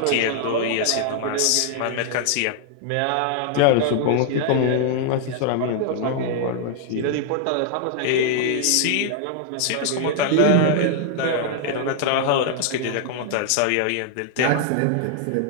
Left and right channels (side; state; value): both; different; correlation 0.00